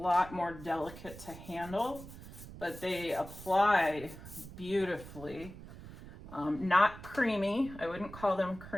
more delicate to handle, but they apply beautifully. Not creamy. I wouldn't call them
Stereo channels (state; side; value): noise; right; rumble, 15 dB below the sound